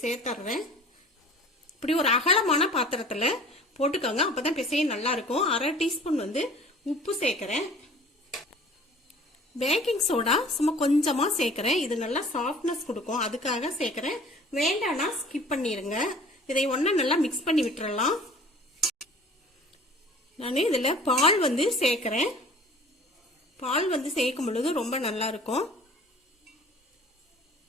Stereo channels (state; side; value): normal; both; correlation 0.47